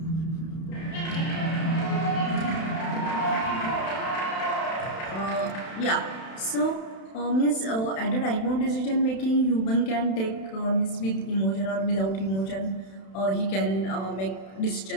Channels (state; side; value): late; right; 31 ms